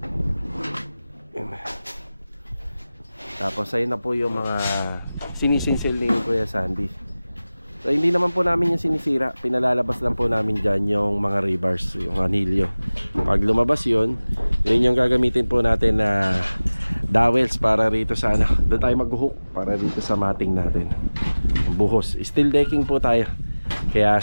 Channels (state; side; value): inverted; both; correlation -0.99